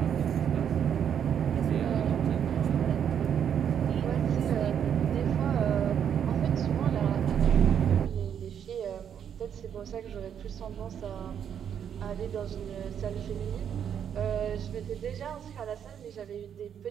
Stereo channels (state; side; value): quieter; left; 8.6 dB